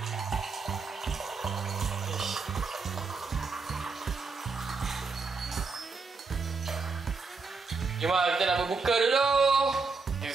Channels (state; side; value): quieter; left; 4.5 dB